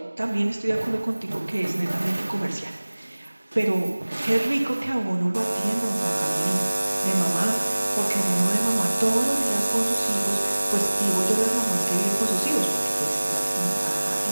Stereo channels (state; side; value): inverted; both; correlation -1.00